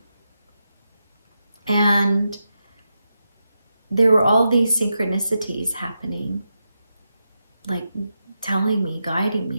And there were all these synchronicities happening, like telling me, guiding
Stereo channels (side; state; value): both; inverted; correlation -0.88